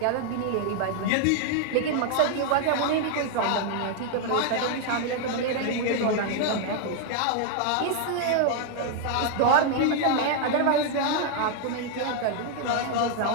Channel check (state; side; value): different; both; correlation 0.00